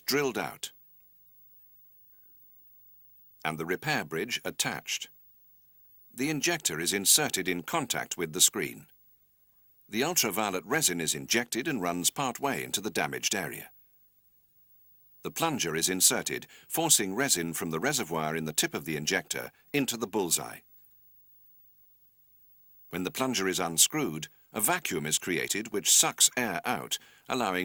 drilled out and the repair bridge attached. The injector is inserted in contact with the screen. The ultraviolet resin is injected and runs part way into the damaged area. The plunger is inserted, forcing resin from the reservoir in the tip of the injector into the bullseye. When the plunger is unscrewed, a vacuum is created which sucks air out,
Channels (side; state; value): both; identical; correlation 1.00